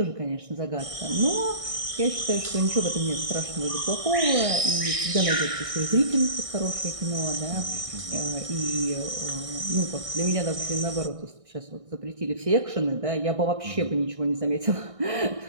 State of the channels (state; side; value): late; left; 1.6 ms